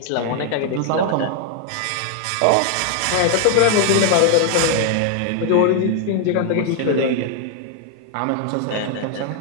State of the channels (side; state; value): both; different; correlation 0.00